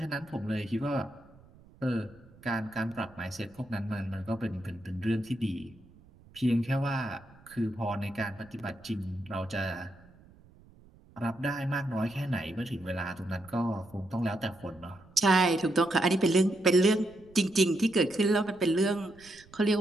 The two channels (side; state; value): right; noise; rumble, 25 dB below the sound